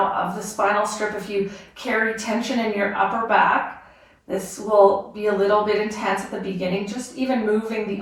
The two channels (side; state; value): both; identical; correlation 1.00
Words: of the spinal strip. If you carry tension in your upper back, this will be a little bit intense at the beginning, just even moving